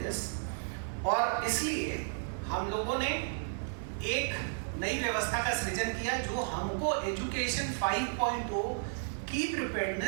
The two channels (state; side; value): silent; left; 56 dB below the other